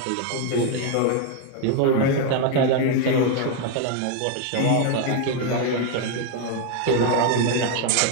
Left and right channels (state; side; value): different; both; correlation 0.01